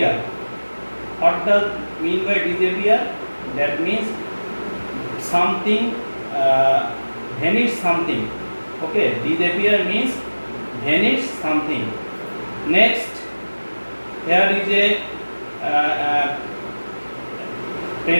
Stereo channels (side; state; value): both; inverted; correlation -1.00